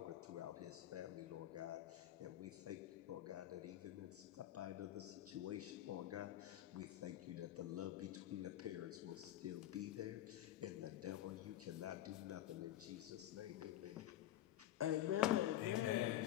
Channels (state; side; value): quieter; right; 13.0 dB